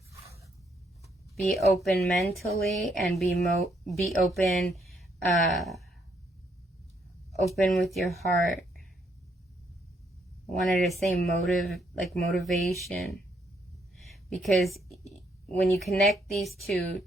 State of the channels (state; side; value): normal; both; correlation 0.73